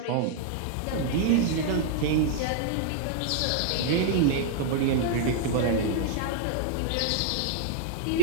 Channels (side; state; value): both; different; correlation -0.01